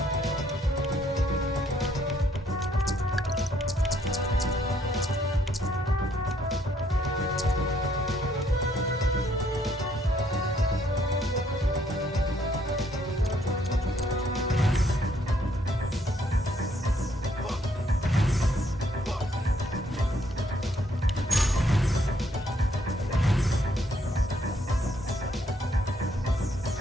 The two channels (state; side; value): normal; both; correlation 0.69